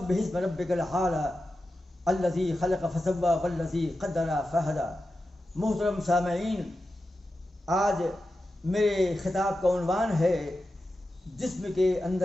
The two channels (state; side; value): normal; both; correlation 0.91